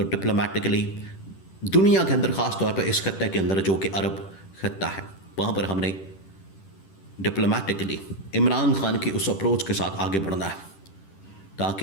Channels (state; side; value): late; right; 10 ms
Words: ڈپلومیٹکلی دنیا کے اندر، خاص طور پہ اس خطے کے اندر جو کہ عرب خطہ ہے، وہاں پر ہم نے ڈپلومیٹکلی عمران خان کی اس اپروچ کے ساتھ آگے بڑھنا ہے